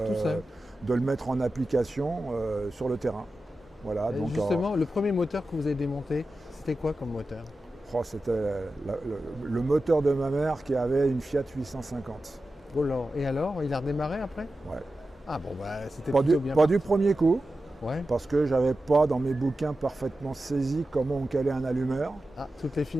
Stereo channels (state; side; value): normal; both; correlation 0.93